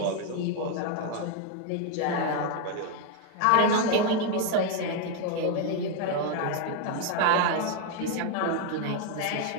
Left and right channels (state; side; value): different; both; correlation 0.01